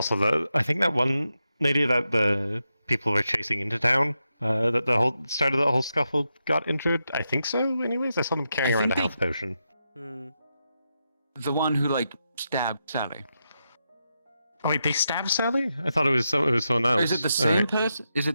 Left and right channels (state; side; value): inverted; both; correlation -0.86